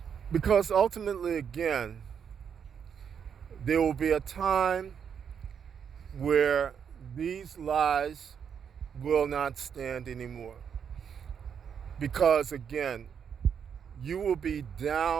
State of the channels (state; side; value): quieter; left; 7.5 dB